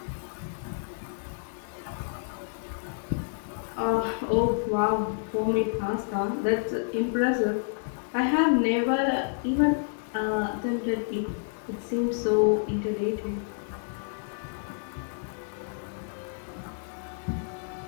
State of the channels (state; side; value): silent; right; digital silence